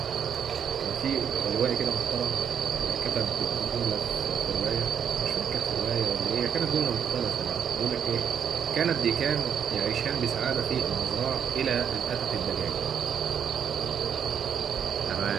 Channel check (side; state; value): left; quieter; 8.0 dB